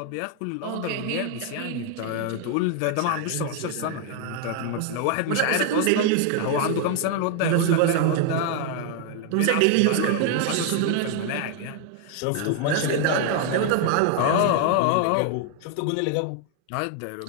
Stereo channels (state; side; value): different; both; correlation 0.00